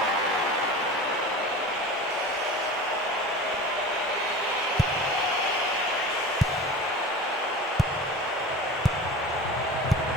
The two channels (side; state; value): both; normal; correlation 0.35